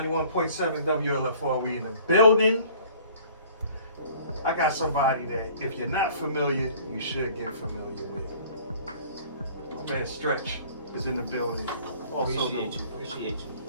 WLFR, we in the building. I got somebody that, if you're not familiar, you should get familiar with. My man Stretch is in the building. Also, Appreciate you.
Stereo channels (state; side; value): inverted; both; correlation -0.51